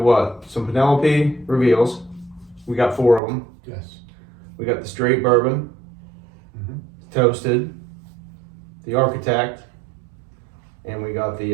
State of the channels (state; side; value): drops out; left; at 3.2 s